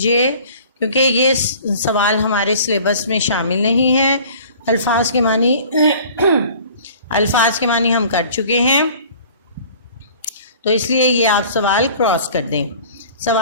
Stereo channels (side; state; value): both; inverted; correlation -0.47